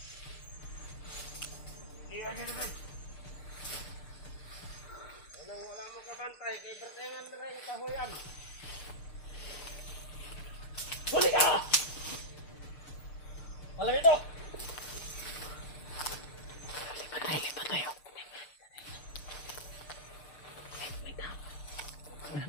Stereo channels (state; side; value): late; right; 6.6 ms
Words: Hindi ka dito din! Walang mo kabantay kay pertengan na rin kahuyan! Huli ka! Malam ito! Lipat tayo.